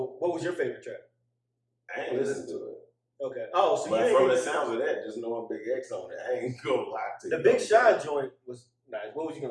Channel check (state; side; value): identical; both; correlation 1.00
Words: what was your favorite track? I ain't listened to it. Okay. Oh, so But you from the ain't sounds of that, just knowing Big X on it, I ain't gonna lie to you. the Big Sean joint was nice. What was you